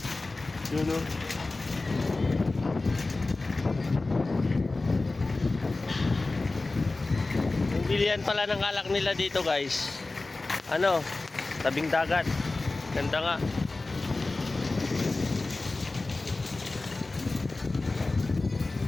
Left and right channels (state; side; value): quieter; right; 3.3 dB